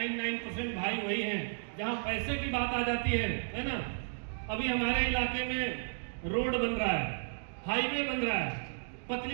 भाई वही हैं जहां पैसे की बात आ जाती है ना? अभी हमारे इलाके में रोड बन रहा है, हाईवे बन रहा है।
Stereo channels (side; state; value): left; silent; digital silence